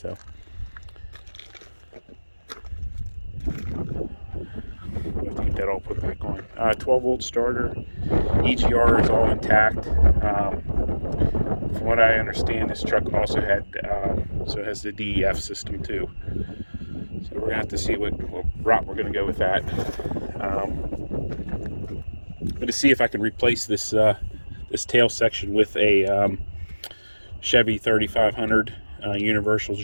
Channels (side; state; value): both; inverted; correlation -1.00